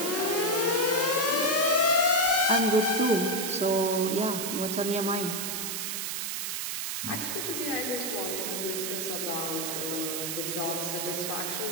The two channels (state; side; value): noise; right; hiss, 3 dB below the sound